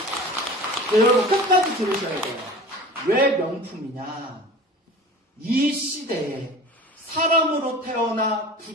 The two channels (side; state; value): both; normal; correlation 0.39